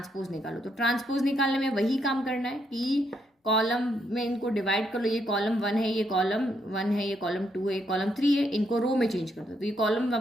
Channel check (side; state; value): both; normal; correlation 0.76